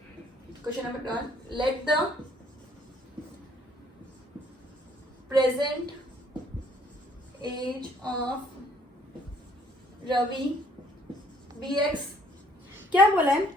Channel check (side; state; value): both; normal; correlation 0.63